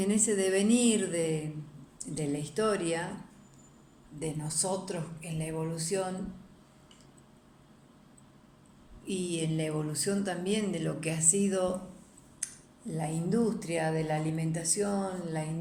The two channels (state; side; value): identical; both; correlation 1.00